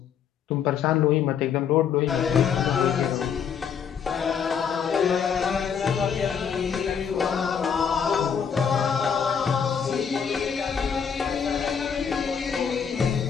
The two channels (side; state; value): right; quieter; 7.3 dB